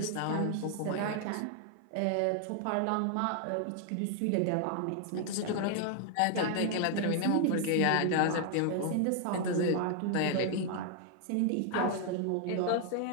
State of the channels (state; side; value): different; both; correlation 0.00